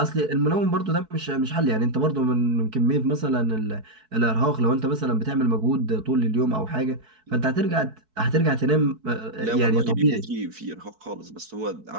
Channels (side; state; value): left; late; 4.6 ms